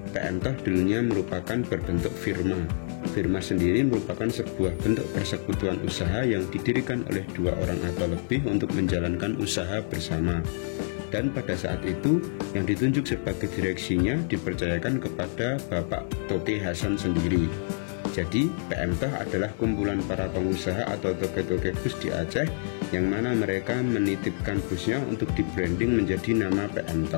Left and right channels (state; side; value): silent; right; digital silence